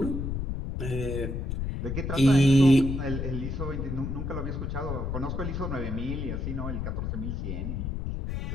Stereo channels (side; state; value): left; noise; rumble, 3 dB below the sound